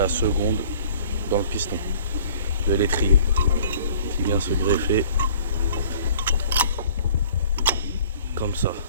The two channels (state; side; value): inverted; both; correlation -0.52